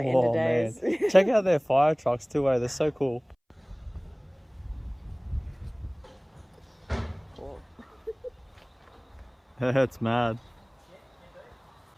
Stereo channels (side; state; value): both; identical; correlation 1.00